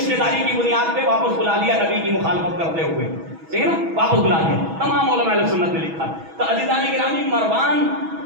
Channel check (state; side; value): late; left; 6.2 ms